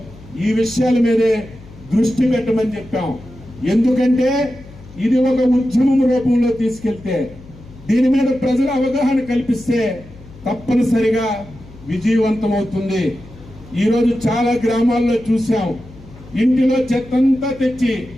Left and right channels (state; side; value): noise; left; hum, 20 dB below the sound